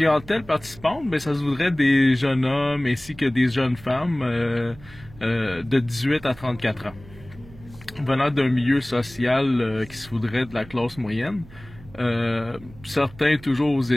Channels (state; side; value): noise; right; hum, 20 dB below the sound